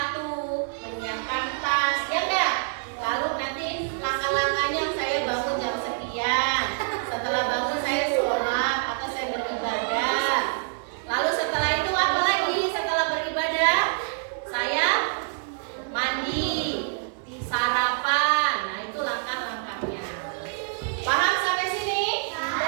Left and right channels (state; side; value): silent; left; digital silence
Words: menyiapkan tas, ya enggak? Lalu nanti langkah-langkahnya saya bangun jam sekian, setelah bangun saya sholat atau saya beribadah. Lalu setelah itu apa lagi? Setelah beribadah saya mandi, sarapan. Nah itu langkah-langkahnya. Paham sampai sini?